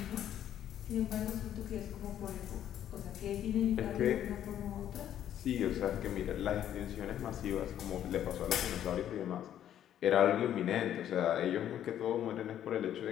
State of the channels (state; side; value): quieter; right; 10.7 dB